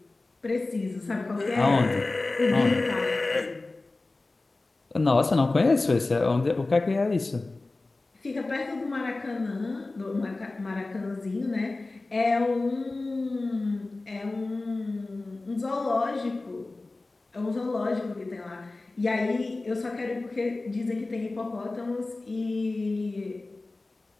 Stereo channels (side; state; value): right; quieter; 3.2 dB